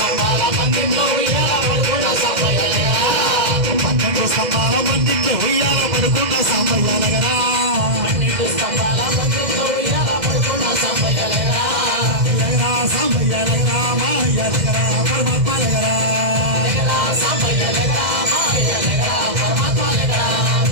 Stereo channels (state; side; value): late; left; 2.0 ms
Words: పందిట్లో ఉయ్యాల పడుకున్న సాంబయ్య దగ్గర 12 స్తంభాల పందిట్లో ఉయ్యాల పడుకున్న సాంబయ్య దగ్గర 12 స్తంభాల పందిట్లో ఉయ్యాల పడుకున్న సాంబయ్య దగ్గర సాంబయ్య దగ్గర మాయ్య దగ్గర పరమాత్మ దగ్గర సాంబయ్య దగ్గర మాయ్య దగ్గర పరమాత్మ దగ్గర